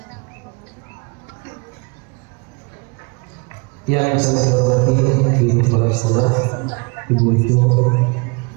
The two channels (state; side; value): quieter; left; 30.3 dB